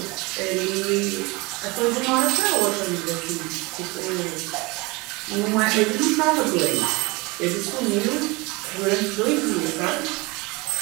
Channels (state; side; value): quieter; left; 25.0 dB